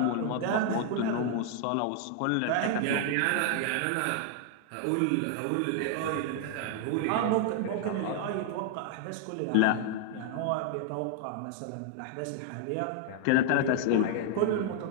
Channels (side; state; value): both; different; correlation 0.00